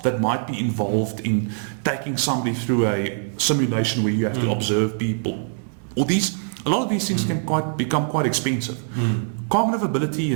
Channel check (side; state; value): left; silent; 63 dB below the other